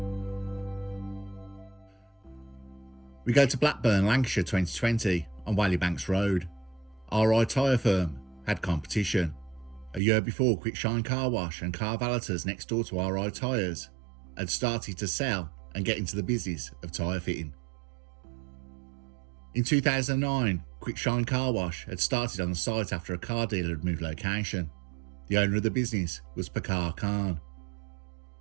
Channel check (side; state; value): left; drops out; at 10.0 s